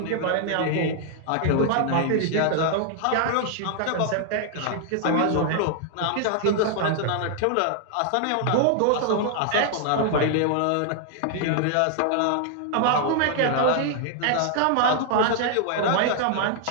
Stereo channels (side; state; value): both; different; correlation 0.00